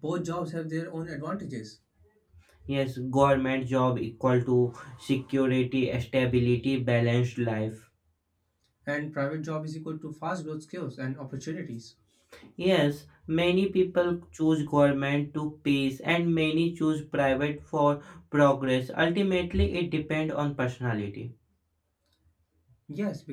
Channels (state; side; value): identical; both; correlation 1.00